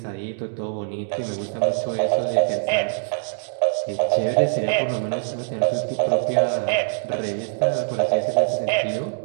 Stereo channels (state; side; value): silent; left; digital silence